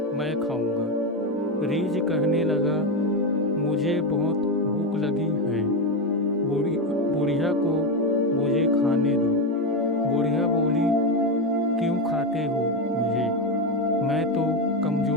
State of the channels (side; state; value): both; normal; correlation 0.11